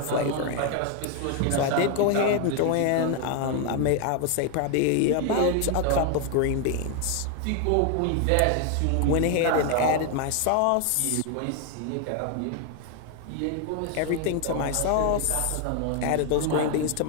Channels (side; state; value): both; different; correlation 0.01